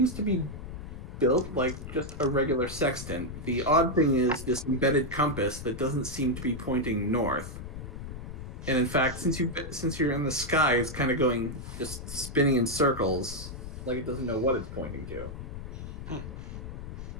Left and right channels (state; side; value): noise; left; rumble, 9 dB below the sound